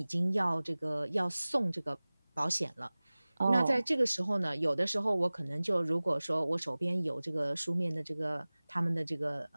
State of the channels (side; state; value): both; inverted; correlation -0.99